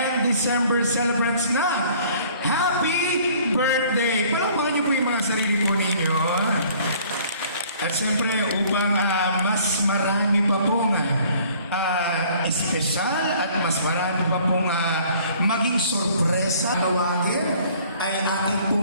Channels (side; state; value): both; inverted; correlation -0.55